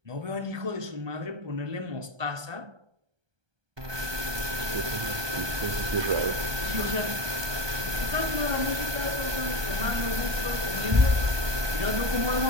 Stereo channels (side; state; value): left; late; 1.3 ms